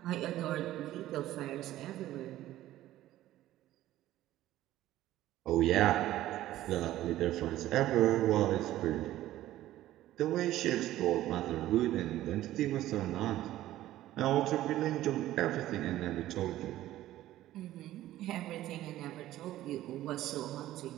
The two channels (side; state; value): left; quieter; 14.4 dB